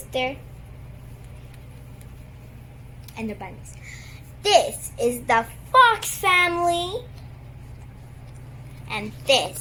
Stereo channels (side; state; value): both; identical; correlation 1.00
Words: and their bunnies. This is the fox family. And